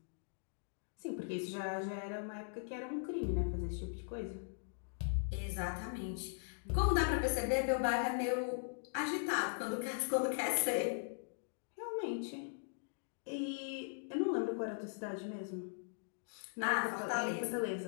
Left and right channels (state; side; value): silent; right; digital silence